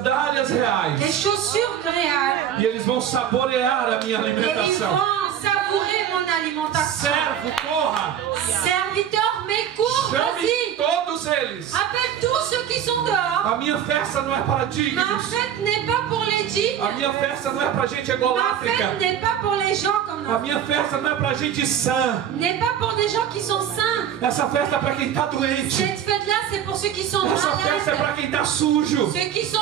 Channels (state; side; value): quieter; left; 9.5 dB